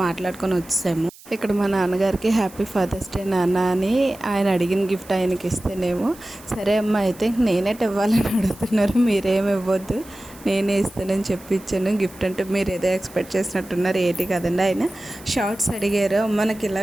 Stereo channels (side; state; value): right; noise; hiss, 22 dB below the sound